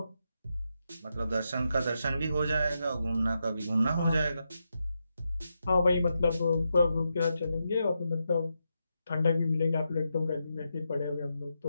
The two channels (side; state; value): both; inverted; correlation -0.85